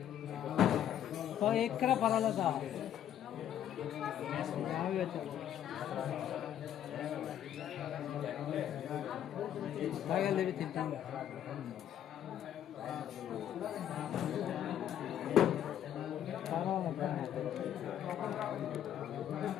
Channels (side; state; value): right; quieter; 10.5 dB